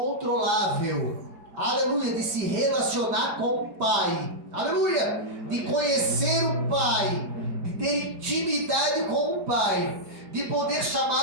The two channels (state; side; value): late; left; 4.7 ms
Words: aleluia, de se relacionar com o Pai, aleluia, de conhecer o Pai, de ter intimidade com o Pai, de poder